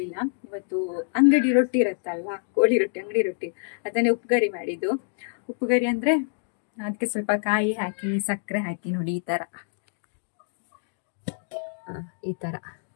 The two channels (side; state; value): right; silent; digital silence